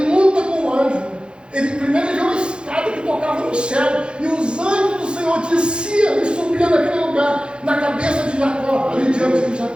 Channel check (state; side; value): late; left; 0.053 ms